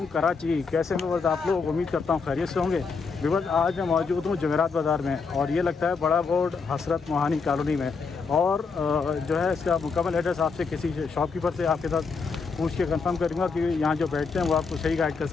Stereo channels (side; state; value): right; quieter; 4.9 dB